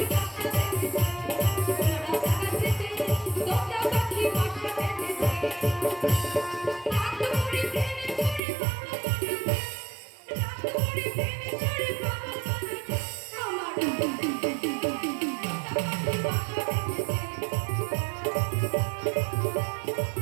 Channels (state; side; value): drops out; left; at 8.4 s